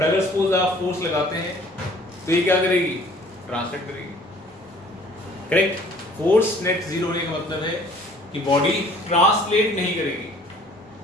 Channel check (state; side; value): normal; both; correlation 0.53